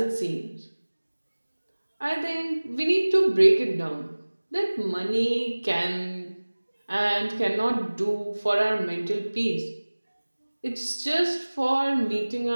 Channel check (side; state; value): both; inverted; correlation -1.00